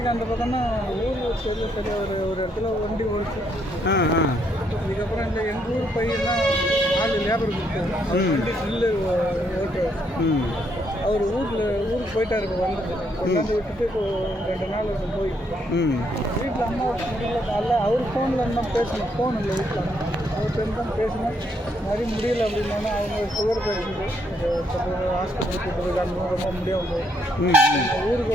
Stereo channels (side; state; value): both; normal; correlation 0.73